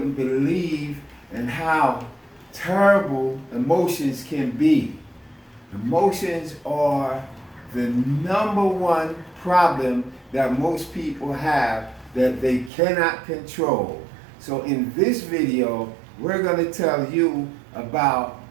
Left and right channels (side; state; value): left; drops out; at 12.7 s